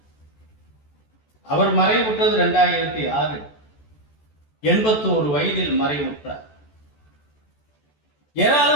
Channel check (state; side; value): late; right; 14 ms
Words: அவர் மறைவுற்றது 2006, 81 வயதில் மறைவுற்றார்.